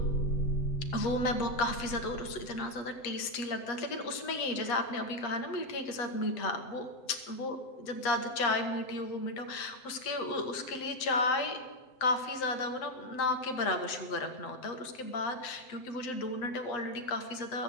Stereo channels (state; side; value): late; right; 7.7 ms